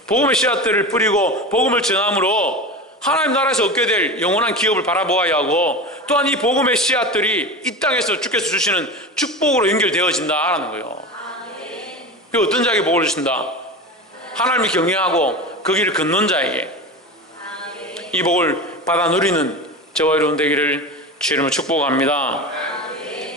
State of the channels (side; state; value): both; normal; correlation 0.27